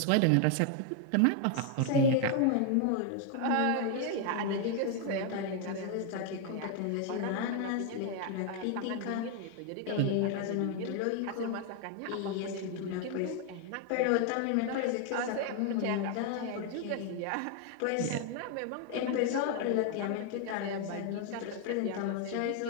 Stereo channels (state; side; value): different; both; correlation 0.00